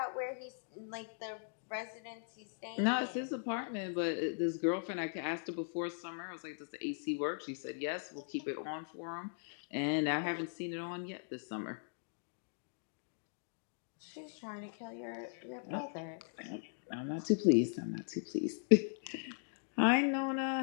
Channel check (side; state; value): right; silent; digital silence